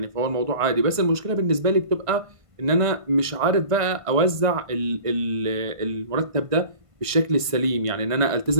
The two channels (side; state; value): left; late; 1.5 ms